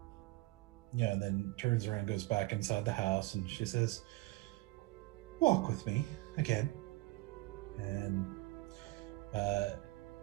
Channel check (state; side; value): quieter; left; 21.4 dB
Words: And then turns around and goes back inside the house, and she says, walk with me again. And